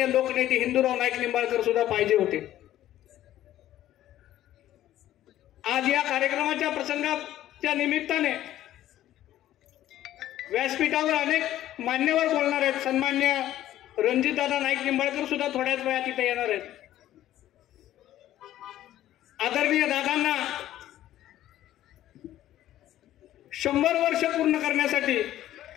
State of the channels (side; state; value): right; quieter; 13.2 dB